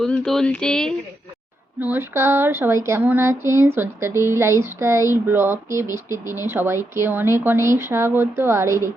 তুলছে। নমস্কার, সবাই কেমন আছেন? সঞ্চিতা ডেইলি লাইফস্টাইল ব্লগে বৃষ্টির দিনে সবাইকে অনেক অনেক স্বাগত। আর এই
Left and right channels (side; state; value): both; normal; correlation 0.83